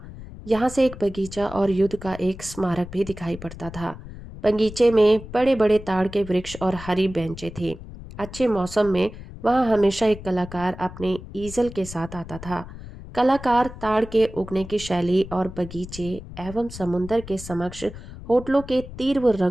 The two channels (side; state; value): left; noise; rumble, 14 dB below the sound